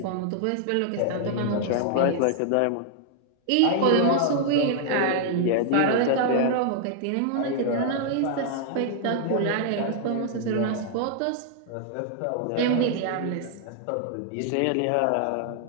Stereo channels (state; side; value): different; both; correlation 0.00